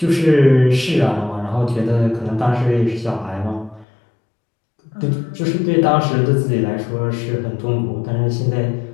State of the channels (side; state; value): right; drops out; at 3.9 s